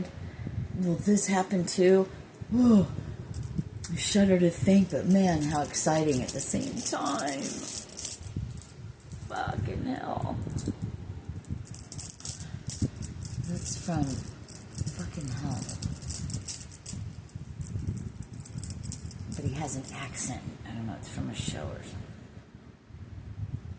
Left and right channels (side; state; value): both; identical; correlation 1.00